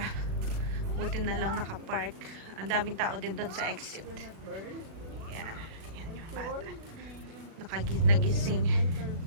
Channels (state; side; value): late; left; 36 ms